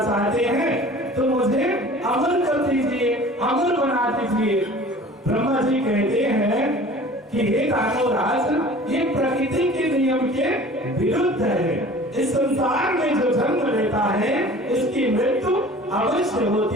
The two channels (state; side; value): normal; both; correlation 0.44